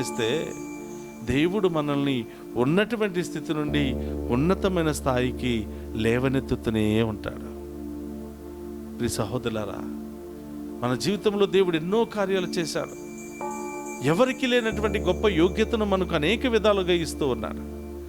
దేవుడు మనల్ని ఉన్నటువంటి స్థితి నుండి ఉన్నతమైన స్థాయికి లేవనెత్తుతూనే ఉంటాడు. ప్రియ సహోదరులారా, మన జీవితంలో దేవుడు ఎన్నో కార్యాలు చేశాడు. ఎవరికి లేనటువంటి గొప్ప యోగ్యతను మనకు అనేక విధాలుగా ఇస్తూ ఉన్నాడు.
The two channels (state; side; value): identical; both; correlation 1.00